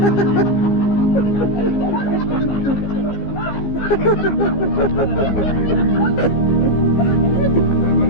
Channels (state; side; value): late; right; 15 ms